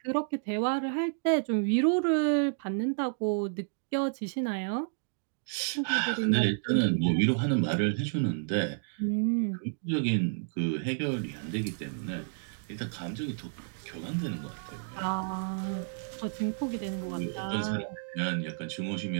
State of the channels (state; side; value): silent; left; digital silence